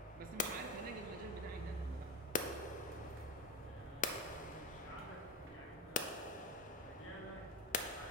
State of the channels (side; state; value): both; normal; correlation 0.17